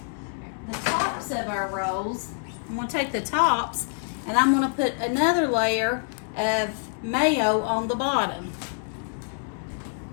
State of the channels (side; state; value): right; silent; digital silence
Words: the tops of our rolls. I'm going to take the tops and I'm going to put another layer of mayo on the bottom.